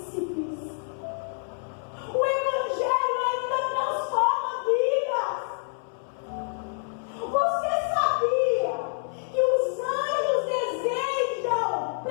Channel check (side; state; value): right; silent; 60 dB below the other